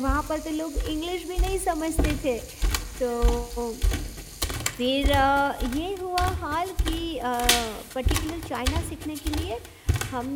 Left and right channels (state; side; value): identical; both; correlation 1.00